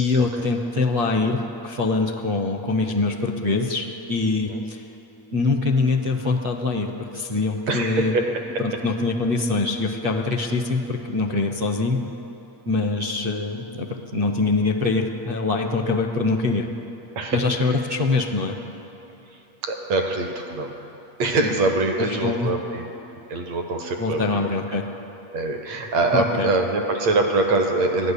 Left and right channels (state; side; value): late; left; 8.5 ms